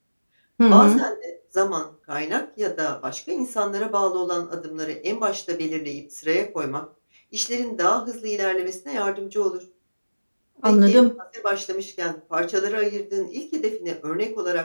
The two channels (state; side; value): inverted; both; correlation -1.00